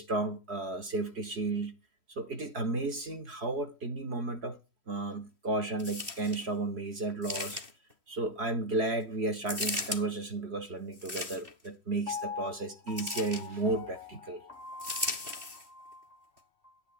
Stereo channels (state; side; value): late; left; 2.7 ms